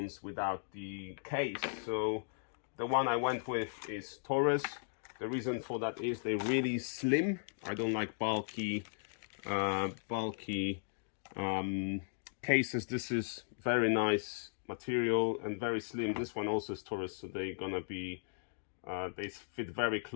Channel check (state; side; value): silent; right; digital silence